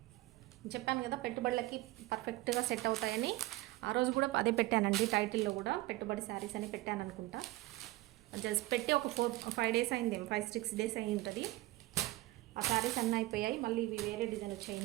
చెప్పాను కదా పెట్టుబడులకి పర్ఫెక్ట్గా సెట్ అవుతాయని. ఆ రోజు కూడా అదే పెట్టానండి, టైటిల్లో కూడా పెట్టుబడి శారీస్ అని పెట్టాను అనుకుంటా. జస్ట్ పెట్టి ఒక 4-5 డేస్ అయింది, 5-6 డేస్ అయి ఉంటుంది. ఆ శారీస్ అన్నీ అయిపోయాయి. మళ్ళీ ఇవి వేరే డిజైన్ వచ్చాయి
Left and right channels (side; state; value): left; quieter; 18.5 dB